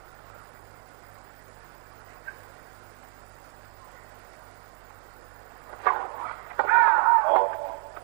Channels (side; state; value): left; quieter; 38.4 dB